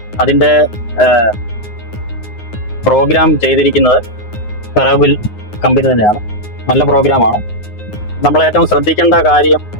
അതിൻ്റെ പ്രോഗ്രാം ചെയ്തിരിക്കുന്നത് ഫെറോബിൽ കമ്പനി തന്നെയാണ്. നല്ല പ്രോഗ്രാമാണ്. നമ്മൾ ഏറ്റവും ശ്രദ്ധിക്കേണ്ട കാര്യം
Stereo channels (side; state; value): right; late; 9.6 ms